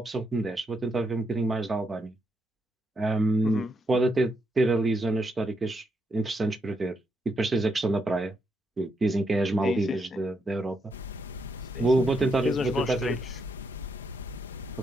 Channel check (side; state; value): both; normal; correlation 0.79